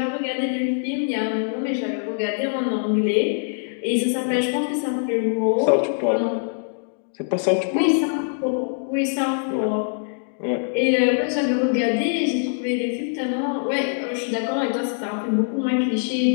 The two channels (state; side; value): silent; right; digital silence